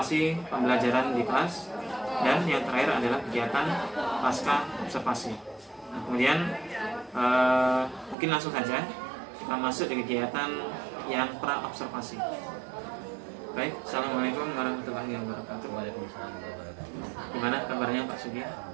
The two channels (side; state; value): left; drops out; at 8.2 s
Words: pembelajaran di kelas, dan yang terakhir adalah kegiatan pasca observasi. Nah, kemudian mungkin langsung saja kita masuk di kegiatan yang pra-observasi. Baik, assalamualaikum warahmatullahi wabarakatuh. Waalaikumsalam warahmatullahi wabarakatuh. Gimana kabarnya Pak Sugi?